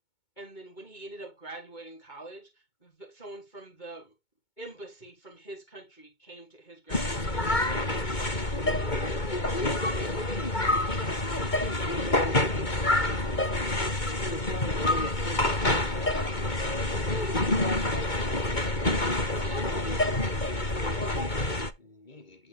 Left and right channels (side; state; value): right; late; 2.2 ms